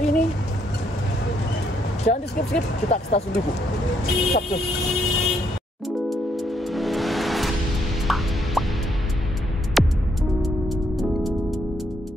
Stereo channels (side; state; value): both; normal; correlation 0.74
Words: ini. Jangan di skip-skip, kita ke stasiun Tugu. Sabtu.